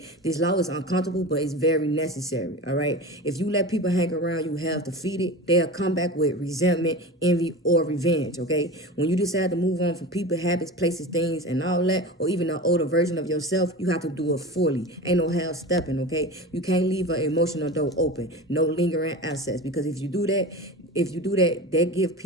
This law is uncomfortable, but it's very necessary, all right? If you let people hang around you half defeated, they'll come back with resentment, envy, or revenge, okay? When you decide to move on from people, habits, places, things, and all that, or even an older version of yourself, you have to do it fully. Ain't no half stepping, okay? You can't leave an emotional door open. No lingering access, because if you do that, that give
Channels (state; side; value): normal; both; correlation 0.30